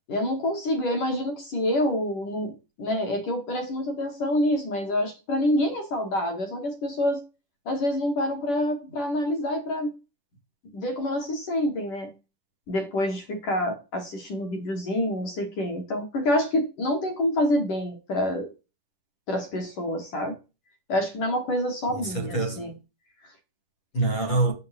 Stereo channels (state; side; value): late; right; 10 ms